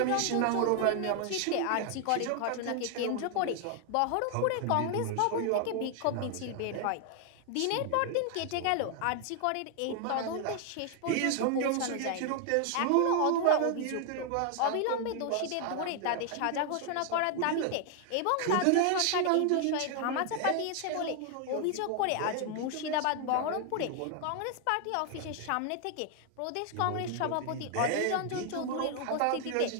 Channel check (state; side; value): different; both; correlation 0.00